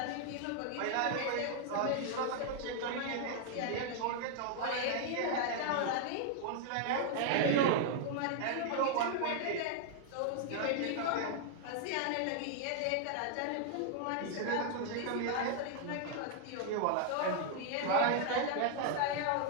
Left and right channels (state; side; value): different; both; correlation 0.00